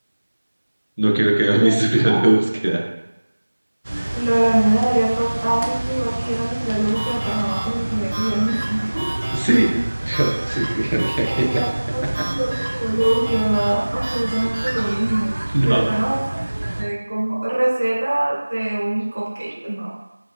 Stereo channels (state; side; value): inverted; both; correlation -1.00